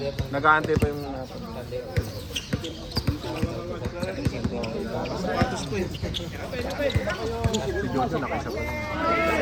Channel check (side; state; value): both; identical; correlation 1.00